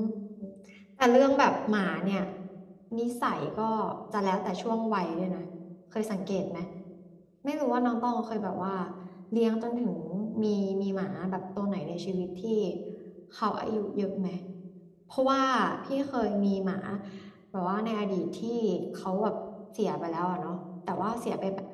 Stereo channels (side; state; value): both; identical; correlation 1.00